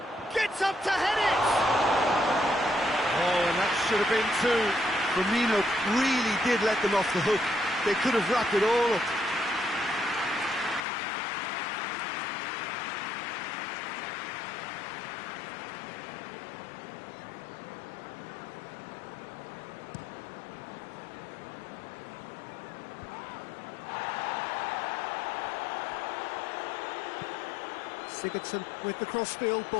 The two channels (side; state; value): right; drops out; at 10.9 s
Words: Gets up to head it! Oh, and that should have been two. Firmino really did let them off the hook. They could have wrapped it all up. Sigurdsson with the crossfield